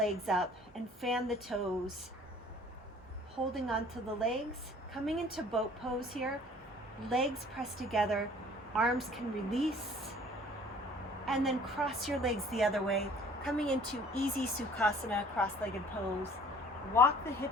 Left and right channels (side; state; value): both; normal; correlation 0.52